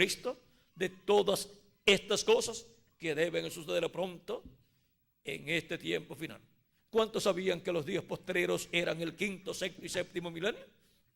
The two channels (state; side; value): identical; both; correlation 1.00